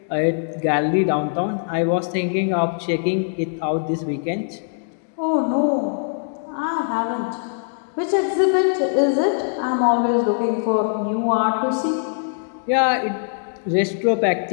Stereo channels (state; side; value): silent; right; digital silence